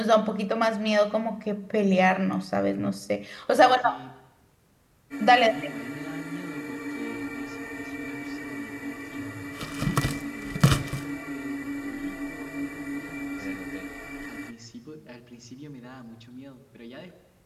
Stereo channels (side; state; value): both; identical; correlation 1.00